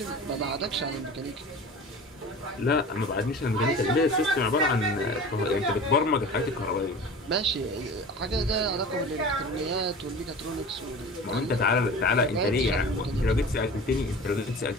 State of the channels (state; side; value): normal; both; correlation 0.37